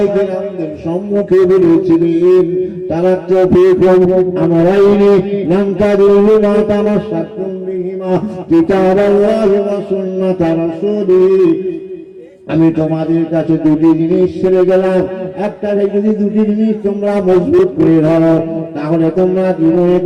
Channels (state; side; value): identical; both; correlation 1.00